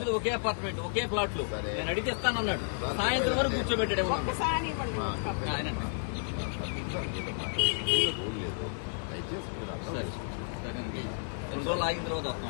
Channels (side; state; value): right; silent; 57 dB below the other